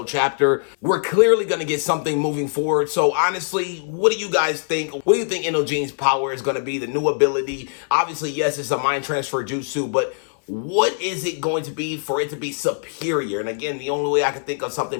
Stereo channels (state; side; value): silent; right; 62 dB below the other